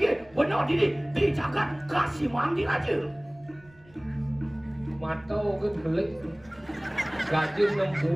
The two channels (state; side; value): noise; right; rumble, 27 dB below the sound